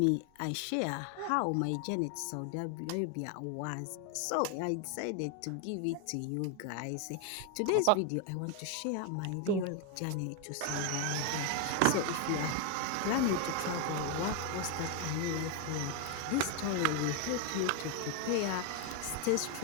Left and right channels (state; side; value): different; both; correlation 0.01